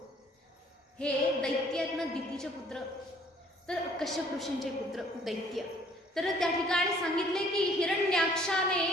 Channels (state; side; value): normal; both; correlation 0.59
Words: हे दैत्य आहेत ना, दितीचे पुत्र, तर कश्यप ऋषींचे पुत्र दैत्य. तर त्या ठिकाणी सांगितले की हिरण्याक्षाने